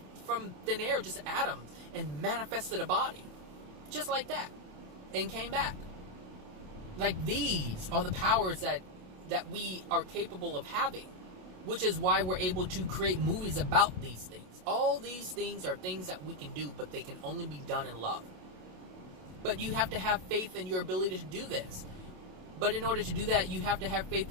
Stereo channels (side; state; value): left; late; 27 ms